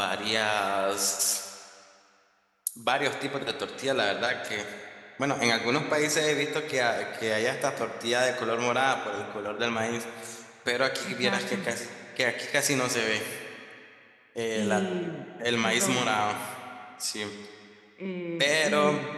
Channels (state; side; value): identical; both; correlation 1.00